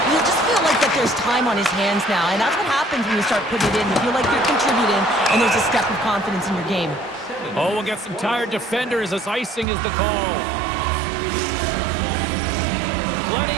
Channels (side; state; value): left; drops out; at 9.7 s